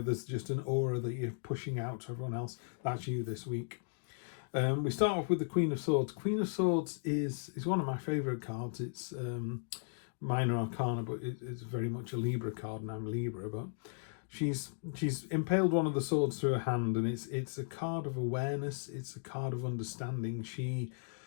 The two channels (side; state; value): right; silent; digital silence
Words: there's just an aura that you're pushing out to everyone else. That's you this week. We start off with the Queen of Swords. Queen of Swords is one of my favourite cards. It's minor arcana, but it's very much a Libra card, and I'm Libra, but she's impaled one of the swords through her hand, and it's a card of awareness. It's a card of understanding. She